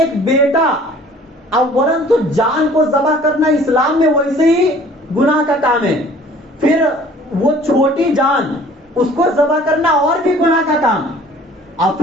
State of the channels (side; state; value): both; normal; correlation 0.52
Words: بیٹا، اولاً تو جان کو ذبح کرنا اسلام میں ویسے ہی گناہ کا کام ہے، پھر وہ چھوٹی جان اس کو ذبح کرنا اور بھی گناہ کا کام. اور